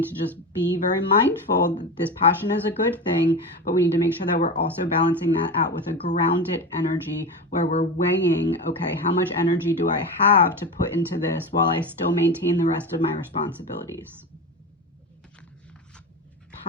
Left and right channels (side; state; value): both; normal; correlation 0.23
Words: to just be very mindful that this passion is a good thing, but we need to make sure that we're also balancing that out with a grounded energy where we're weighing, okay, how much energy do I have to put into this while I still maintain the rest of my responsibilities?